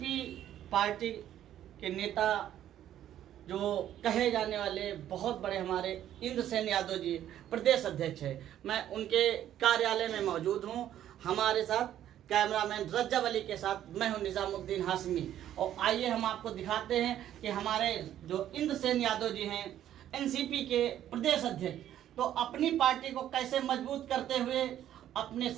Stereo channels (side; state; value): left; quieter; 11.5 dB